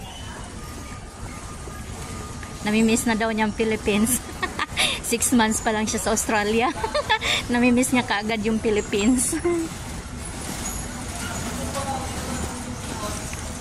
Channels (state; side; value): identical; both; correlation 1.00